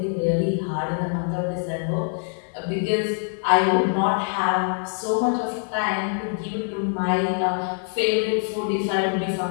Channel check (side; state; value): right; silent; 62 dB below the other